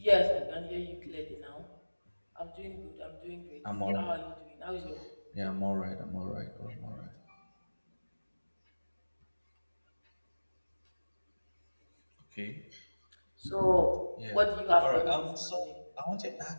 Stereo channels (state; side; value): inverted; both; correlation -1.00